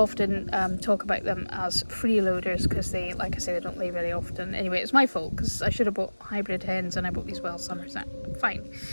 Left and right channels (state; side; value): inverted; both; correlation -1.00